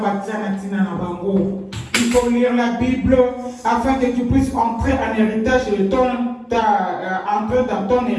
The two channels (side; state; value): both; identical; correlation 1.00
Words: Il faut lire la Bible afin que tu puisses entrer en héritage de entrer dans ton